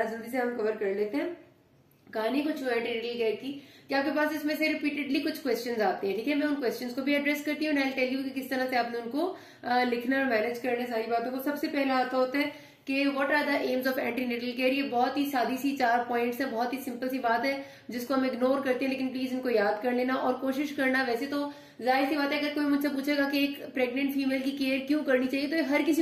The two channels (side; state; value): both; identical; correlation 1.00